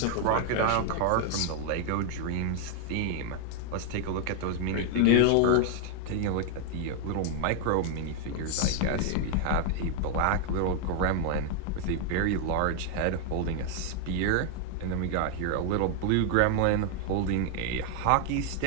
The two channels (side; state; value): both; different; correlation 0.00